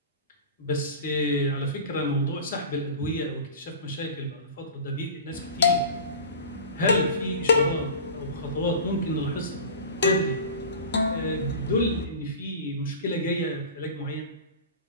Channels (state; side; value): inverted; both; correlation -0.35